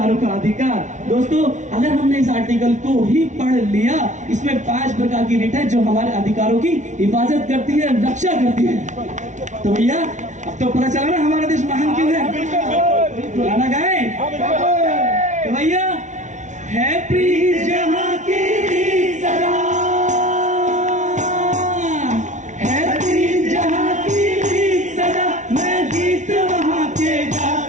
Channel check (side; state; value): left; late; 0.36 ms